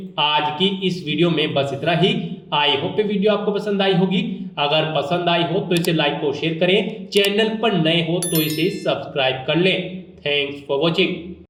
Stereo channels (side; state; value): both; identical; correlation 1.00